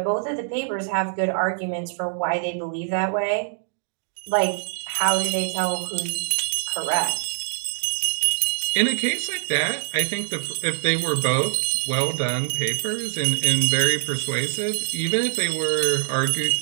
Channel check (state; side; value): silent; left; digital silence